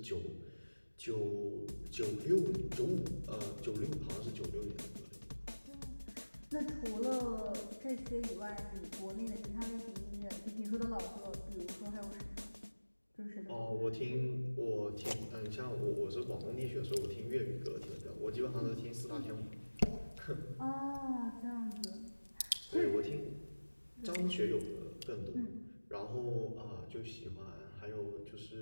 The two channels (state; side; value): inverted; both; correlation -1.00